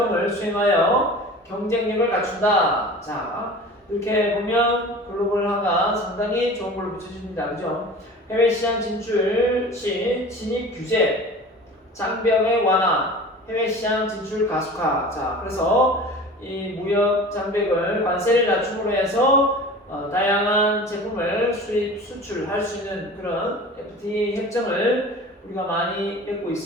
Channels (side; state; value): both; normal; correlation 0.39